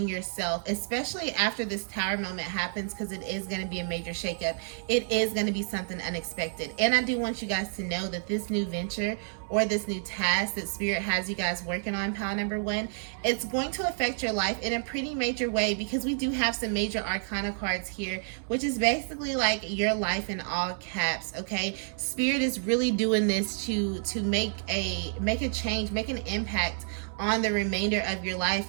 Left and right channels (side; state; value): left; silent; digital silence